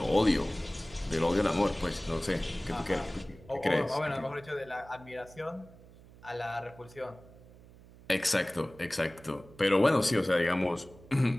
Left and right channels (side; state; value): right; noise; hum, 22 dB below the sound